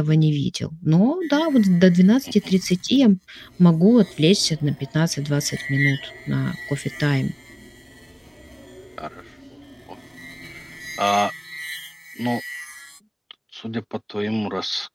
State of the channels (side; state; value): both; identical; correlation 1.00